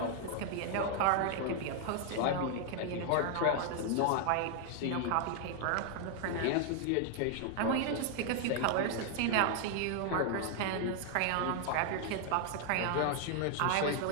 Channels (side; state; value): both; different; correlation 0.00